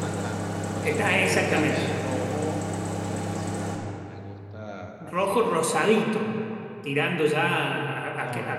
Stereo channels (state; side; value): identical; both; correlation 1.00